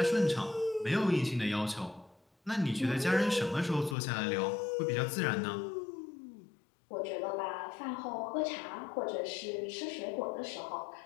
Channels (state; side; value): drops out; right; at 4.0 s